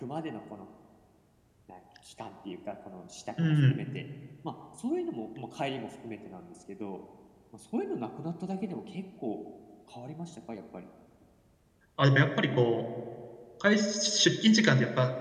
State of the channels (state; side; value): identical; both; correlation 1.00